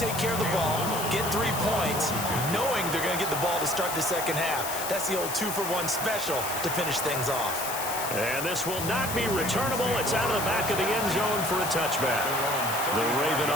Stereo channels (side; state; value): left; noise; hiss, 6 dB below the sound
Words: care of the ball, get 3 points, knowing they're going to get the ball to start the second half. That's the old 2-for-1 special to finish things off. And this will not be returnable. It's out of the back of the end zone for a touchback. The Raven